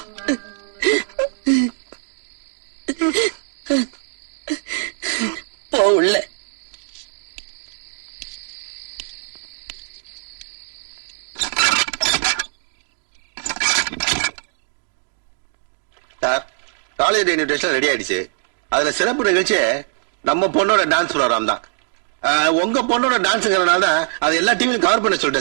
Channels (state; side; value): silent; left; 65 dB below the other